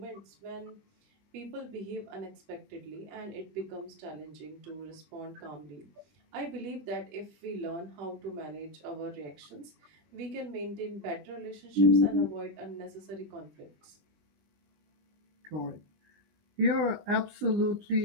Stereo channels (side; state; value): left; late; 20 ms